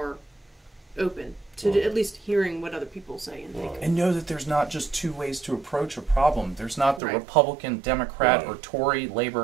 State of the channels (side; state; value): left; drops out; at 7.0 s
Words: open to at least hearing what other people say and think. And know that there's not just two ways to approach a problem. There's not the Right. Republican, Democrat, or Tory,